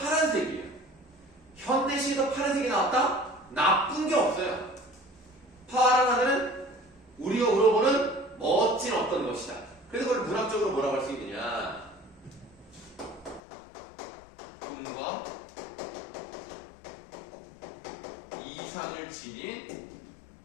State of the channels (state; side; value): drops out; right; at 13.4 s